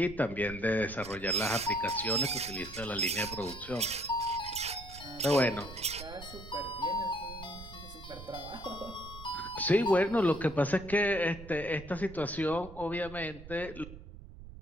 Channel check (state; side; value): noise; right; rumble, 15 dB below the sound